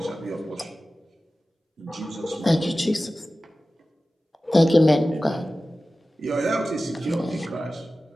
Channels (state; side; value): normal; both; correlation 0.96